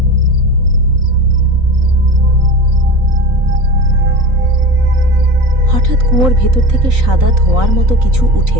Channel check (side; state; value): left; late; 3.9 ms